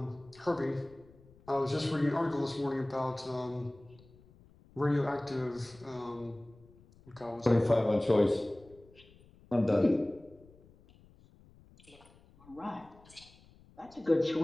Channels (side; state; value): left; noise; rumble, 26 dB below the sound